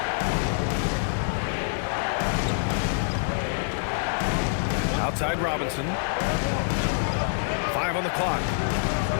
Outside Robinson. 5 on the clock.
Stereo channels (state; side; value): silent; right; digital silence